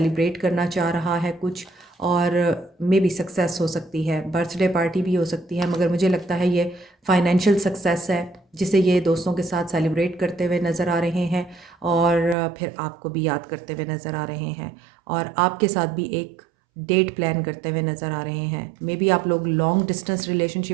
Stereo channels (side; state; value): left; drops out; at 12.4 s